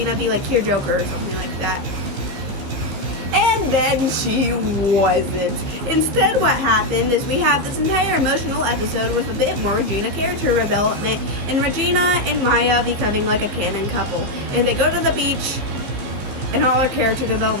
be like Cure Joker or something like that. And then she wasn't. Instead, what happened is we have this entire emotional episode with a bit more Regina character development, and Regina and Maya becoming like a canon couple. And they go to the beach, and all her character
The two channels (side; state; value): left; late; 14 ms